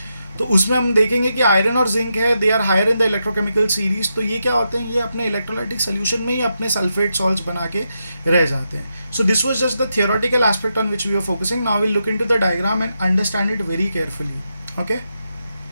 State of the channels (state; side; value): inverted; both; correlation -0.85